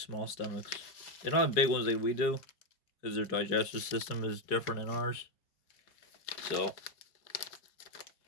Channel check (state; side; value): late; right; 4.7 ms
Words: stomachs. They don't have big ones like we do. Because their digestive system is different than ours. So,